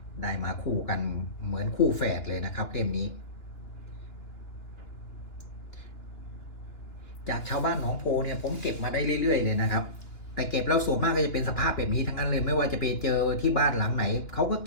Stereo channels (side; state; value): right; late; 2.9 ms